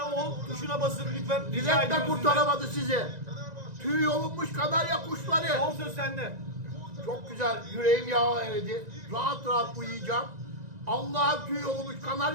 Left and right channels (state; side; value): late; left; 1.9 ms